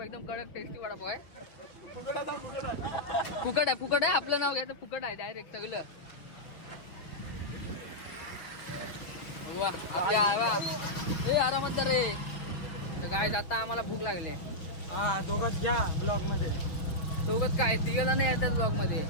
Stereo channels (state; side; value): late; right; 6.2 ms